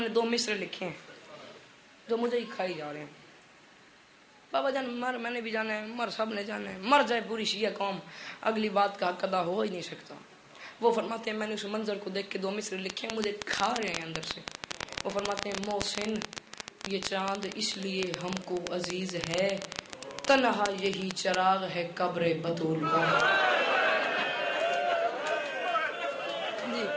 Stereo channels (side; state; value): both; identical; correlation 1.00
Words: نے 2 مصرے لکھے ہیں جو مجھے ہی کھائی جا رہے ہیں. بابا جان مر میں نے بھی جانا ہے، مر سب نے جانا ہے، مر جائے پوری شیعہ قوم، اگلی بات کا حق ادا ہو ہی نہیں سکتا. وہ فرماتے ہیں میں نے اس منظر کو دیکھ کے 2 مصرے لکھے ہیں، مجھے کھا رہے ہیں اندر سے. وہ فرماتے ہیں محسن یہ چاند اس لیے ہم کو عزیز ہے، تنہا یہی چراغ ہے قبر بطول کا.